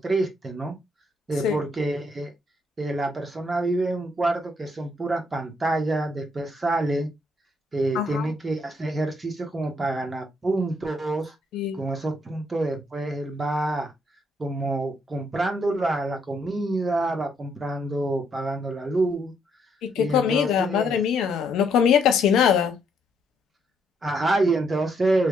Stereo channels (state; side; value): normal; both; correlation 0.72